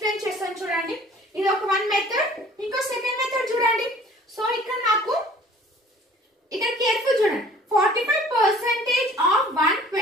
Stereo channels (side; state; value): both; normal; correlation 0.51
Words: చేస్తాను చూడండి. ఇది ఒక వన్ మెథడ్. ఇంకో సెకండ్ మెథడ్ చూడండి. సో ఇక్కడ నాకు ఇక్కడ కేర్ఫుల్ చూడండి 45% ఆఫ్